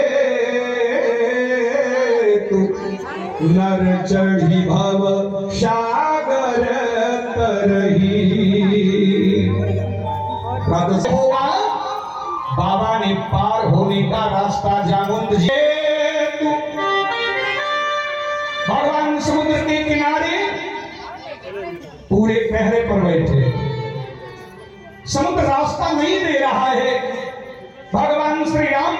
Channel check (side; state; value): both; identical; correlation 1.00